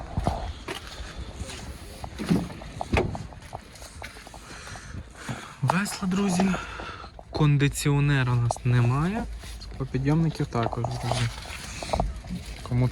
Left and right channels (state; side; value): identical; both; correlation 1.00